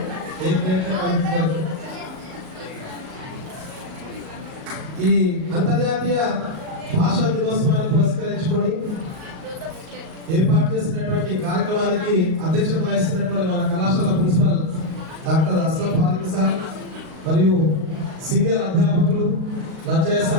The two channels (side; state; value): left; late; 38 ms